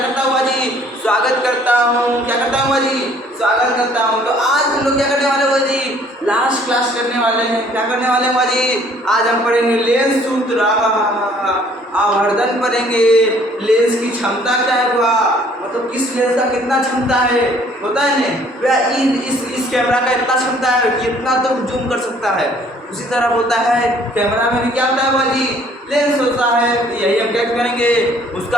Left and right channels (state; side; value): normal; both; correlation 0.58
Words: करता हूँ जी, स्वागत करता हूँ। क्या करता हूँ जी, स्वागत करता हूँ। तो आज हम लोग क्या करने वाले हो जी, लास्ट क्लास करने वाले हैं। क्या करने वाले हैं जी, आज हम पढ़ेंगे लेंस सूत्र, आवर्धन पढ़ेंगे। लेंस की क्षमता क्या है, मतलब किस लेंस का कितना क्षमता है, होता है ना, इस कैमरा का इतना क्षमता है कि इतना तो जूम कर सकता है। उसी तरह होता है कैमरा में भी क्या होता है बाजी, लेंस होता है। यही हम क्या करेंगे,